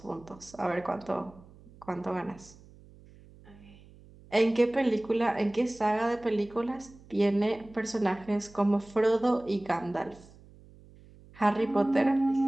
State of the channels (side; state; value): right; noise; hum, 23 dB below the sound